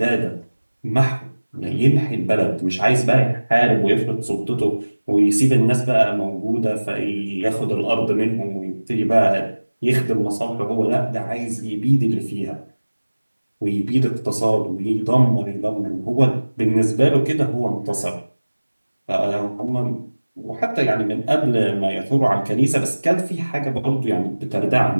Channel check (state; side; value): inverted; both; correlation -1.00